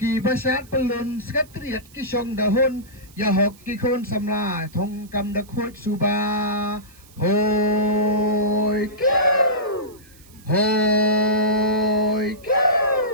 basyat pelun, sekretariat kisong dahun, ya hok kikon samla, thong kam dak hot suba. Hoi, kiu, hoi,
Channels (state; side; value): noise; right; hiss, 26 dB below the sound